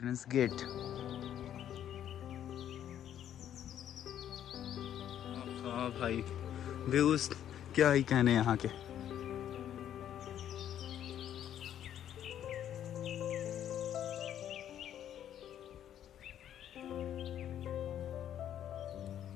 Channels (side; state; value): right; quieter; 10.5 dB